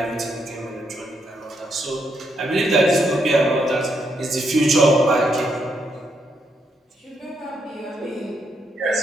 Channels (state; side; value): normal; both; correlation 0.78